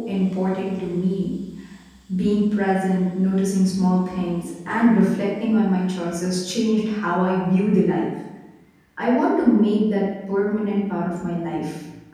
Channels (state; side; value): identical; both; correlation 1.00